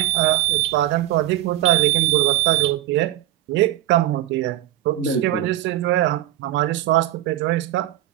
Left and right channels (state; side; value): quieter; left; 14.2 dB